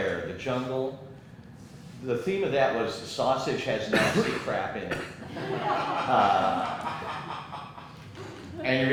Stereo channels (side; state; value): both; identical; correlation 1.00